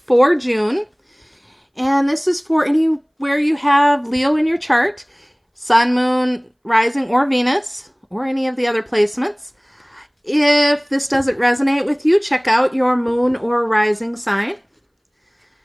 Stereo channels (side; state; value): both; identical; correlation 1.00